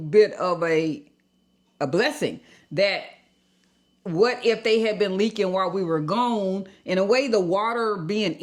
of a blessing that what if they had been leaking while we were gone? In a way, the water being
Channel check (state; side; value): identical; both; correlation 1.00